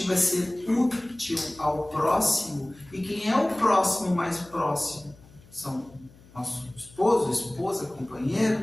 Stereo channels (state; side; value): noise; left; hum, 25 dB below the sound